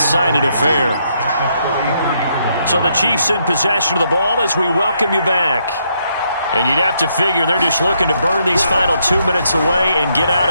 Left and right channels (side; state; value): both; inverted; correlation -0.75